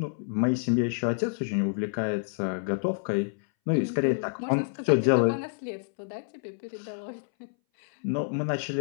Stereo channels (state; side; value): silent; right; 59 dB below the other